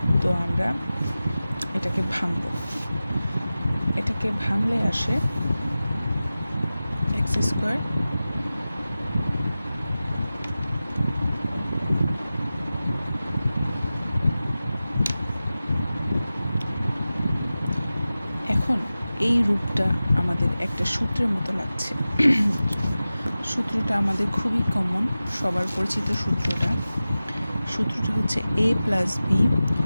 তো আমরা এটাকে ভাঙলে আসে x²। এখন এই রূপটা আমাদের একটা সূত্রের মতো লাগছে। সূত্রটা আমাদের খুবই কমন, সবার পরিচিত সূত্রটা হচ্ছে a plus b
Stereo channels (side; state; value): both; inverted; correlation -0.96